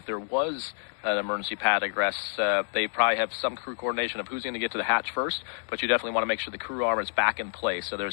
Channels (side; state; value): right; silent; digital silence